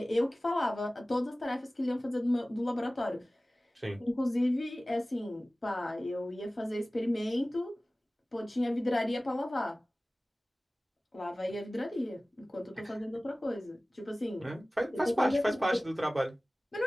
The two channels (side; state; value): both; normal; correlation 0.97